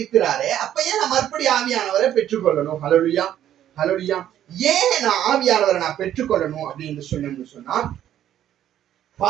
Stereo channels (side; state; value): left; quieter; 11.2 dB